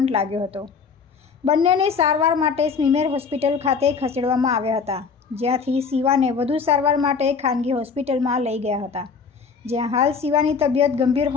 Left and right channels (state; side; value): quieter; right; 5.5 dB